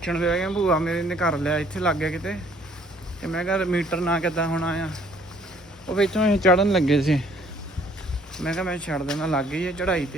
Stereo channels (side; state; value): both; normal; correlation 0.60